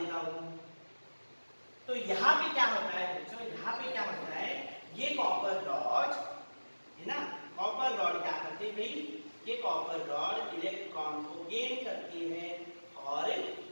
हूं, तो यहाँ पे क्या होता है बच्चों? यहाँ पे क्या होता है? ये कॉपर रॉड है ना, कॉपर रॉड क्या करती है भाई? ये कॉपर रॉड इलेक्ट्रॉन को गेन करती है और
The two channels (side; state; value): both; inverted; correlation -1.00